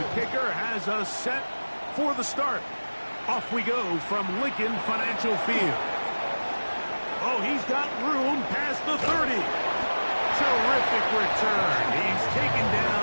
kicker has us set for the start. Off we go from Lincoln Financial Field. Oh, he's got room past the 30. Terrific return. He's taken down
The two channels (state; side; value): inverted; both; correlation -1.00